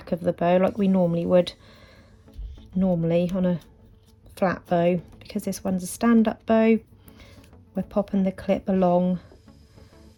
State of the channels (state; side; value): identical; both; correlation 1.00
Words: of the bow like we normally would on a flat bow. Because this one's a stand-up bow, we're popping the clip along